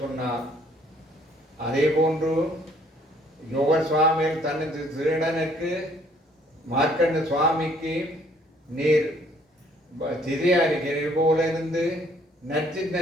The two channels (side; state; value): both; normal; correlation 0.62